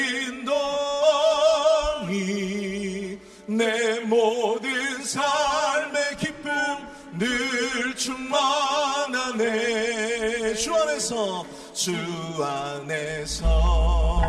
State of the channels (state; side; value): identical; both; correlation 1.00